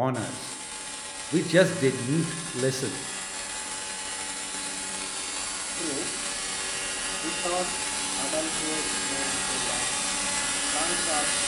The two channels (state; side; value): identical; both; correlation 1.00